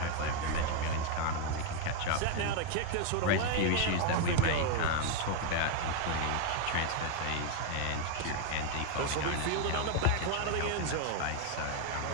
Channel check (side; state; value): both; different; correlation 0.01